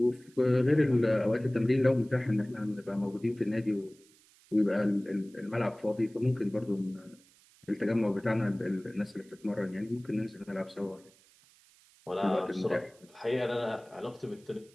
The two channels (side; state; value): right; noise; hiss, 28 dB below the sound